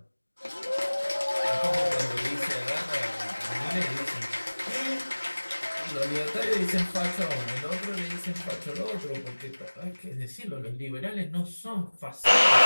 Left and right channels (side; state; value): both; inverted; correlation -1.00